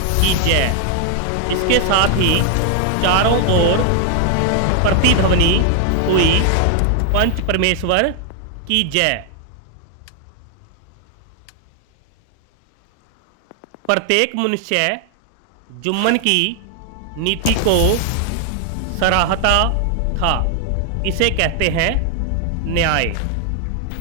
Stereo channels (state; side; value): different; both; correlation 0.00